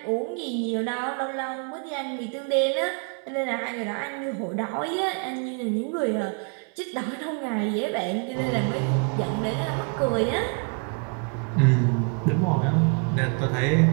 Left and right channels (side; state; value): left; quieter; 36.8 dB